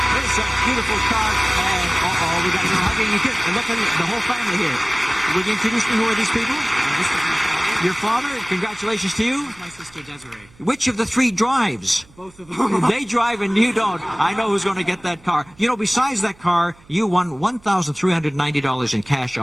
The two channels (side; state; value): right; noise; hum, 27 dB below the sound